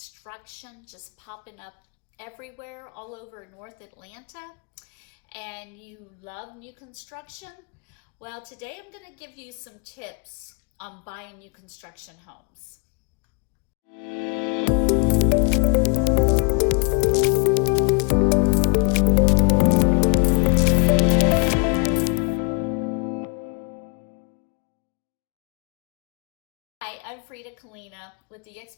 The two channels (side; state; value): right; quieter; 34.8 dB